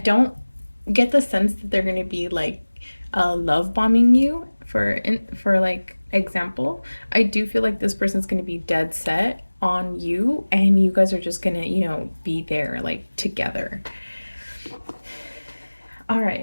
get the sense that they're gonna be like love bombing you for like example. I do feel like this person's going to be dead set on you and you guys are just going to, you know, be there like together. All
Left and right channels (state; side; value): inverted; both; correlation -1.00